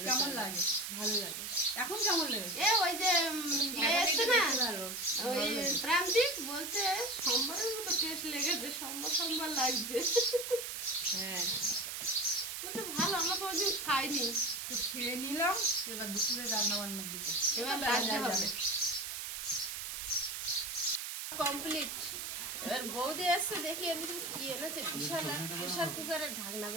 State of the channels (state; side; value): noise; right; hiss, 5 dB below the sound